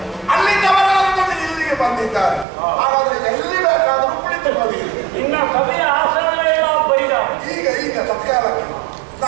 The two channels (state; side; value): drops out; left; at 2.5 s